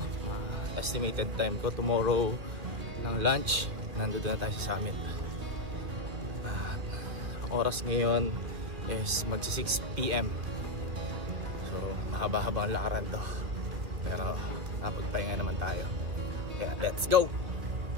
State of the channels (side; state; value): left; late; 2.3 ms